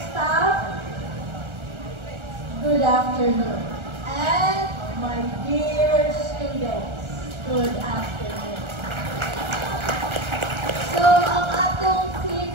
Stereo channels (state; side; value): late; left; 1.4 ms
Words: staff, good afternoon. And my dear students, good afternoon. So, ang atong theme